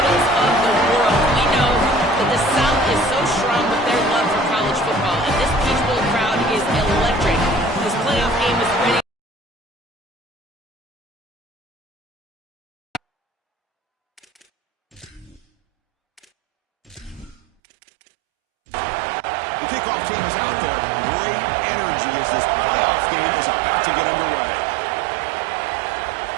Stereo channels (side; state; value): left; drops out; at 17.4 s